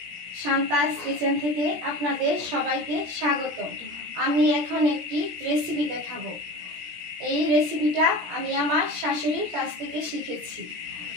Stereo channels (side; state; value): left; late; 17 ms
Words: শান্তাস কিচেন থেকে আপনাদের সবাইকে স্বাগত। আমি এখন একটি রেসিপি দেখাবো। এই রেসিপিটা আমি আমার শাশুড়ির কাছ থেকে শিখেছি।